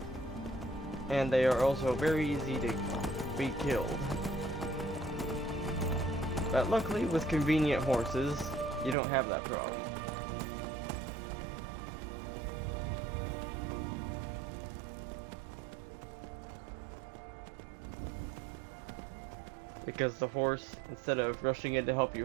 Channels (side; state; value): left; drops out; at 9.0 s